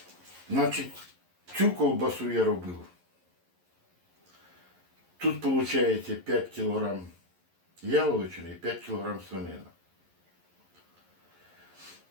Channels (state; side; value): late; left; 11 ms